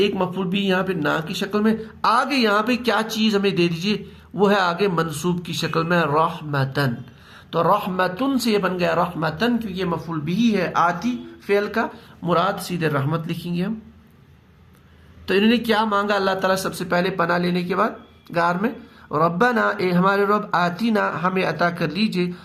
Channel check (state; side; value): identical; both; correlation 1.00